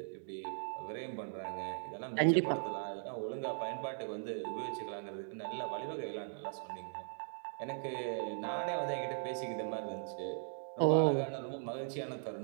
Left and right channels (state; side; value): silent; left; digital silence